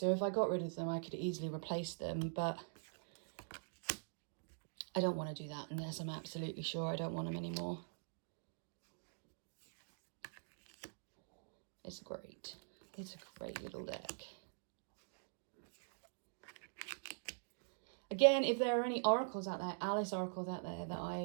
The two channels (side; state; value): left; silent; digital silence